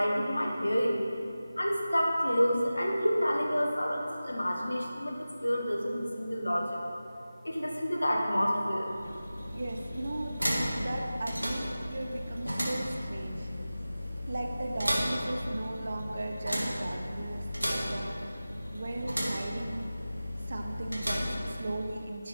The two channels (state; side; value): inverted; both; correlation -0.96